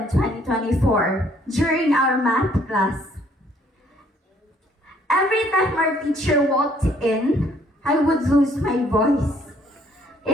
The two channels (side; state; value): both; normal; correlation 0.64